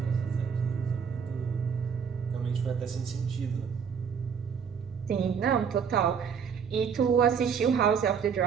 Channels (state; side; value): quieter; left; 6.8 dB